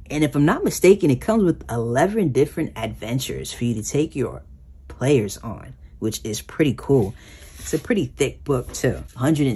And if I'm not mistaken, it comes with 11 different adventures for you to take your players on, which is pretty cool. It's a pretty thick book too,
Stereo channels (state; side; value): identical; both; correlation 1.00